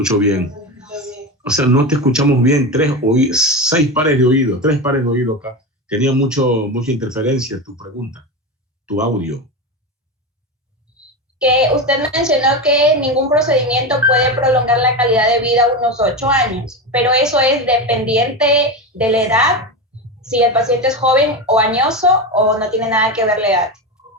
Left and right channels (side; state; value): both; normal; correlation 0.19